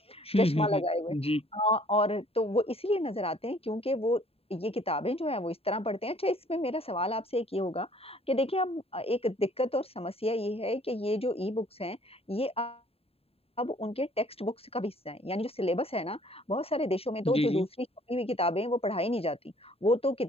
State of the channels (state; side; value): late; right; 0.28 ms